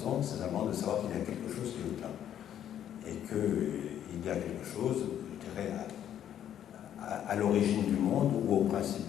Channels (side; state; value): right; quieter; 10.3 dB